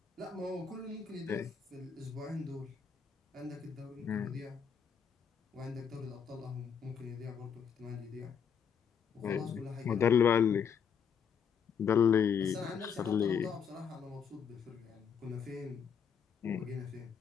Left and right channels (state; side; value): quieter; right; 7.1 dB